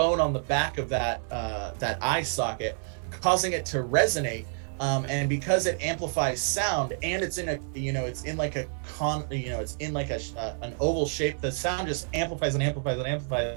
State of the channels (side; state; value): left; silent; digital silence